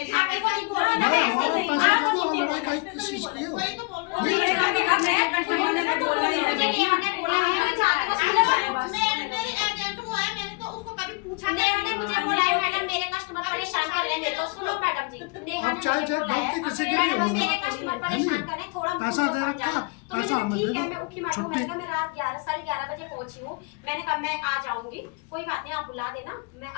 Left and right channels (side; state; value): right; quieter; 29.6 dB